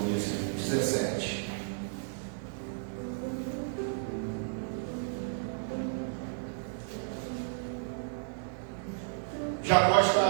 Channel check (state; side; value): silent; left; digital silence